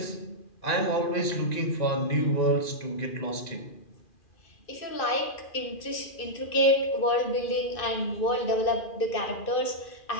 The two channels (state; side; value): late; right; 2.4 ms